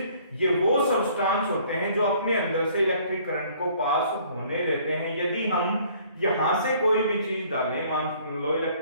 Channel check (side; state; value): both; inverted; correlation -0.58